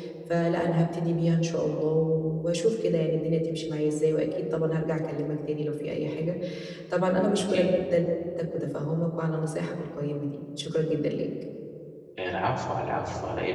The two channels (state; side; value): identical; both; correlation 1.00